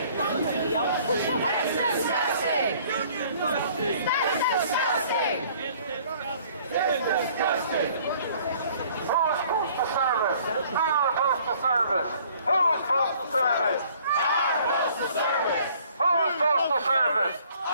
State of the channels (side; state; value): both; inverted; correlation -0.57